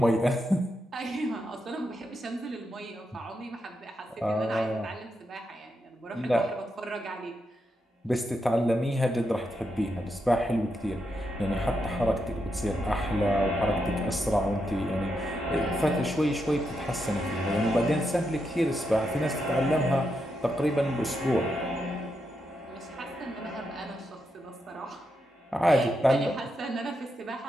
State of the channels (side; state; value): both; normal; correlation 0.84